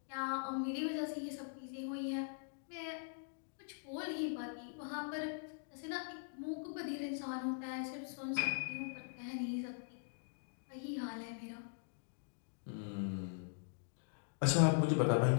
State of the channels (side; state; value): right; silent; digital silence